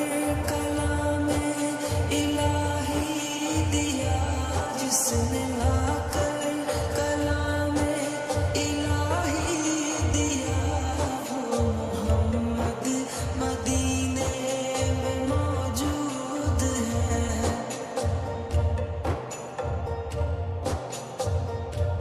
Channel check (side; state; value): both; identical; correlation 1.00